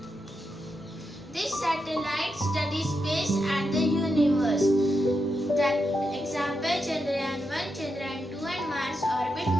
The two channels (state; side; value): normal; both; correlation 0.85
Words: This satellite studies space and the universe. That example Chandrayaan 1, Chandrayaan 2 and Mars orbit